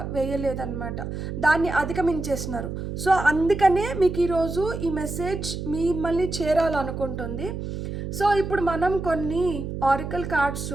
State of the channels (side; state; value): right; noise; hum, 6 dB below the sound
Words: వేయలేదన్నమాట, దాన్ని అధిగమించేసినారు. సో అందుకనే మీకు ఈరోజు ఈ మెసేజ్ మిమ్మల్ని చేరాలనుకుంటుంది. సో ఇప్పుడు మనం కొన్ని ఆరికల్ కార్డ్స్